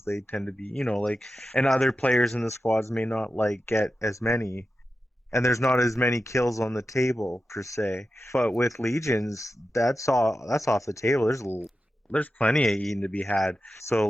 they tend to be, like, and other players in the squads may not like get as many, and there's not as many kills on the table per se. But with Legions, that's off the table. There's plenty of eating to be had. So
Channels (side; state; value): both; normal; correlation 0.91